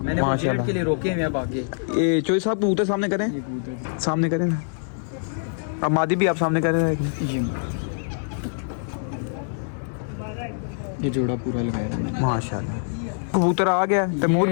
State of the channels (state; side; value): silent; right; digital silence